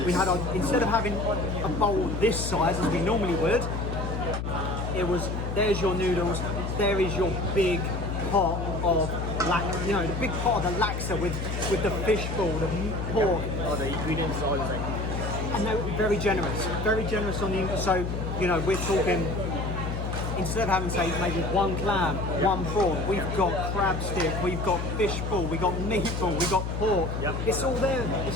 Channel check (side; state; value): left; noise; hum, 3 dB below the sound